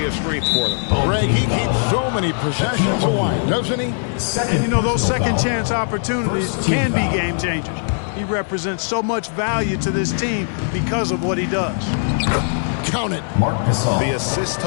a strength for them. Greg, he keeps so many possessions alive, doesn't he? And you know, those second chance opportunities can be game changers. He represents so much value to this team because of what he does. Count it. Mark Gasol. The assist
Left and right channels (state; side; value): silent; right; 66 dB below the other